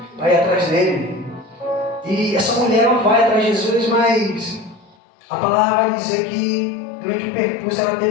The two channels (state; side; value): drops out; right; at 5.0 s